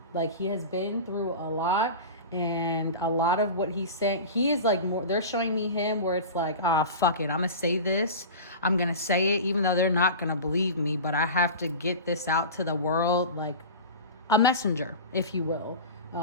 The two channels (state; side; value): inverted; both; correlation -0.31